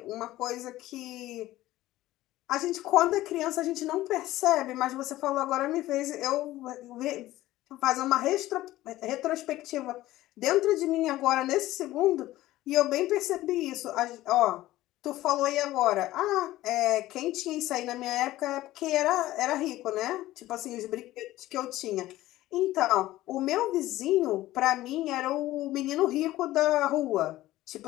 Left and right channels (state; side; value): quieter; right; 16.0 dB